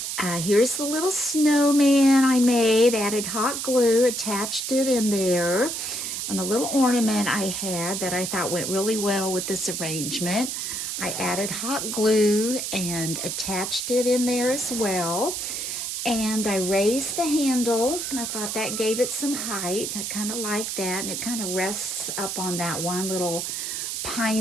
Here's the little snowman I made, added hot glue, attached it in there, and a little ornament I had that I thought went really well with this arrangement. I added hot glue and attached it in there as well. And I raised the handle, and I thought that gave it some height. I kind of like that, and it kind of rests up on that one little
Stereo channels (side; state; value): right; noise; hiss, 4 dB below the sound